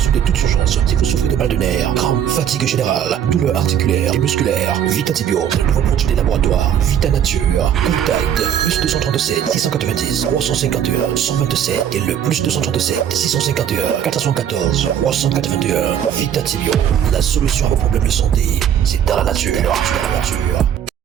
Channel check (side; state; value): left; quieter; 9.4 dB